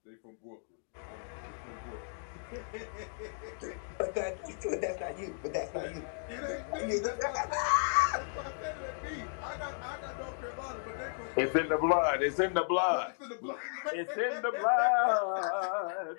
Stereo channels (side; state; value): right; silent; digital silence